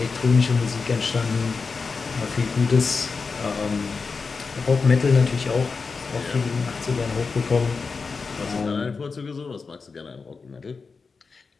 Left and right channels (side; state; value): right; quieter; 4.7 dB